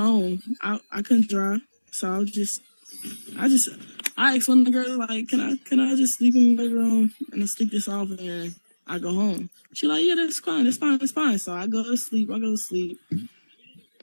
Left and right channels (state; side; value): inverted; both; correlation -1.00